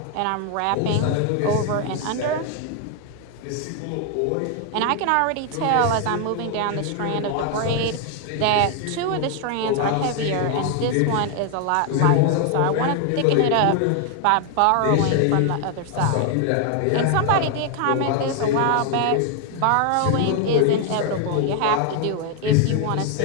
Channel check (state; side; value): different; both; correlation 0.00